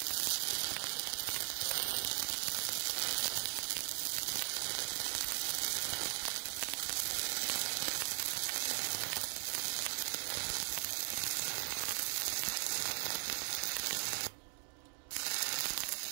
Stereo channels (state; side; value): silent; left; 52 dB below the other